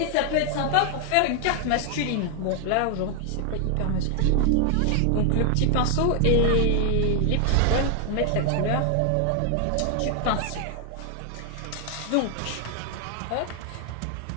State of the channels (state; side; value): different; both; correlation 0.00